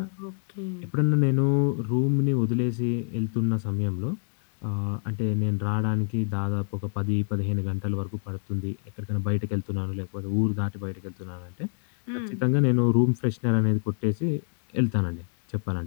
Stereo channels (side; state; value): right; silent; 60 dB below the other